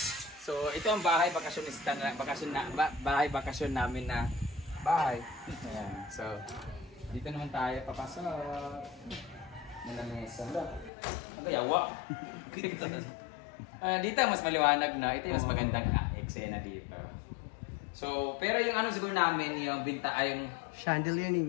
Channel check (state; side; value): drops out; right; at 10.9 s